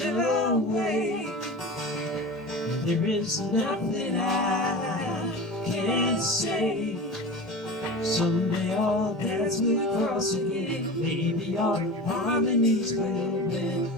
away. There is nothing I can say. Someday all paths will cross again. Maybe our harmonies will mend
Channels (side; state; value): both; normal; correlation 0.31